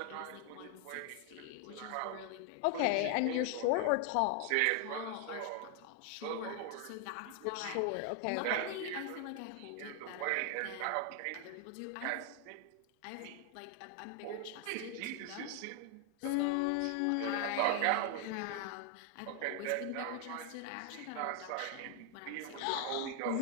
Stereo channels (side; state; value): both; different; correlation 0.00